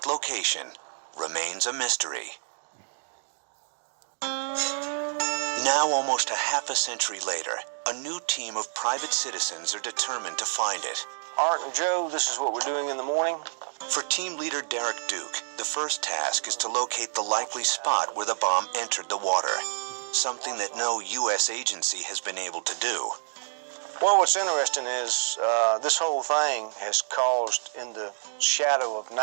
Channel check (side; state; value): left; silent; digital silence